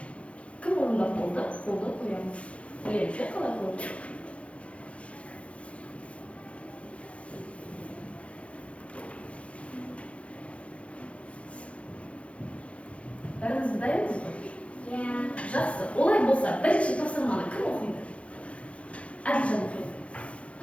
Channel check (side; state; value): right; late; 0.062 ms